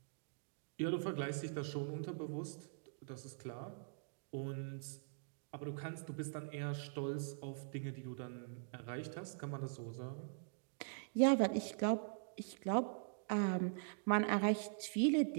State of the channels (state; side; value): silent; left; digital silence